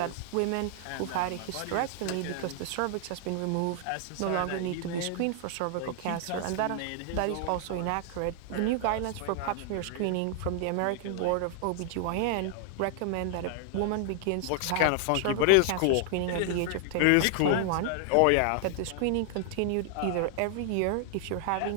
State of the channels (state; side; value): different; both; correlation 0.00